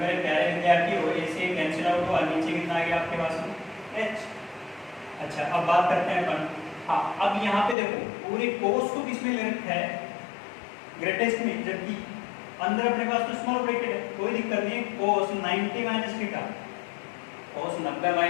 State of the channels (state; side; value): drops out; right; at 7.8 s